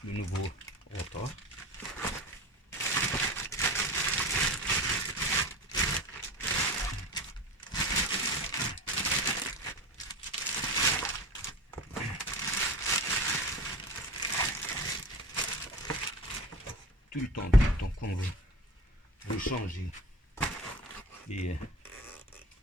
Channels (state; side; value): normal; both; correlation 0.33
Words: le nouveau rotor. Tout le temps, quand vous changez et